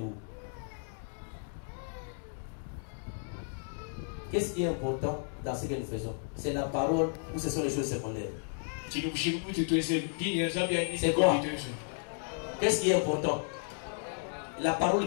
Qu'est-ce qui est important dans ce que nous faisons? C'est la parole ou ce sont les choses secondaires? C'est quoi? Qu'est-ce qui est important? La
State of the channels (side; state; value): right; silent; 56 dB below the other